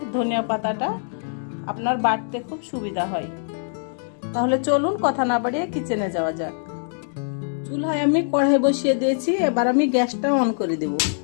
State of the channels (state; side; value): silent; right; digital silence